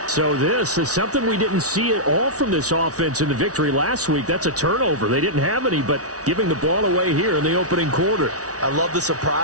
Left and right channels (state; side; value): late; left; 0.67 ms